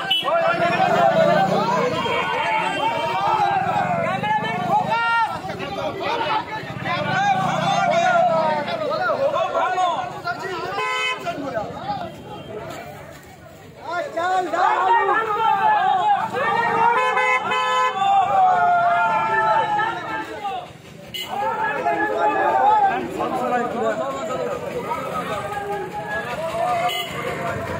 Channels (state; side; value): identical; both; correlation 1.00